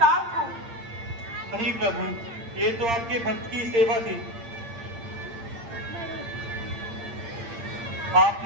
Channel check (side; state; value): left; late; 8.7 ms